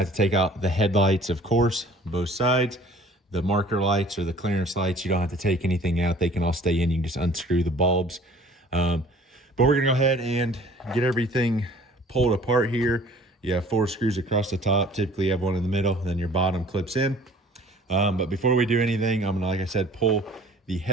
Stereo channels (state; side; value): normal; both; correlation 0.51